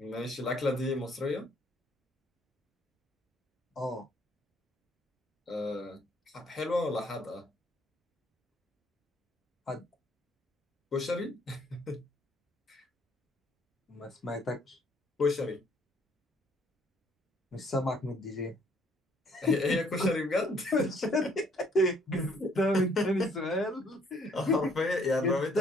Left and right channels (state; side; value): normal; both; correlation 0.64